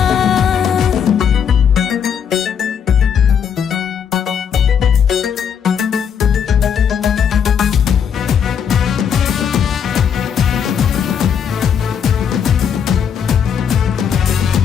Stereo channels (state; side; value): quieter; right; 7.7 dB